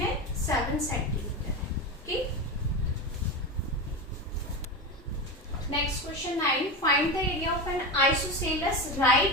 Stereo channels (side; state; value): both; normal; correlation 0.20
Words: 7 सेंटीमीटर है। Okay, next question 9, find the area of N isosceles